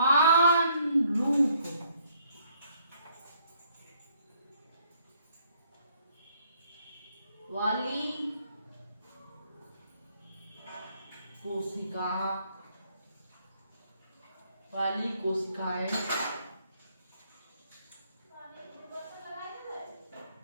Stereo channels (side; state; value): both; inverted; correlation -0.67